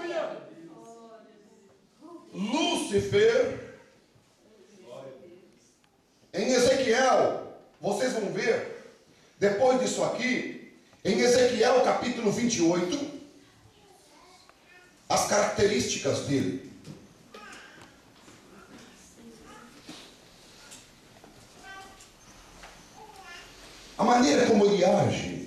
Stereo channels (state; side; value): identical; both; correlation 1.00